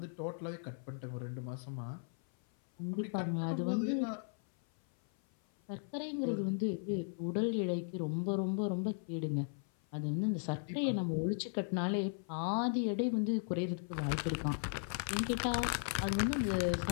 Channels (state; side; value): silent; right; 53 dB below the other